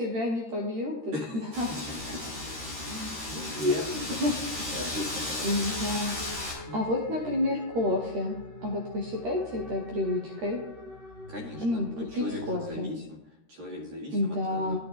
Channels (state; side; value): late; left; 13 ms